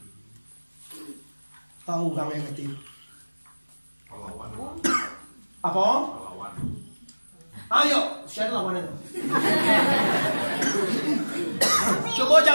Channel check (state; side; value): inverted; both; correlation -1.00